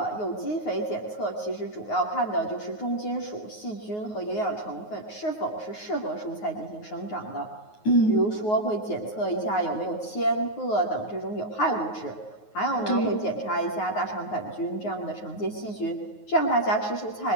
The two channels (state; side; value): late; right; 9.5 ms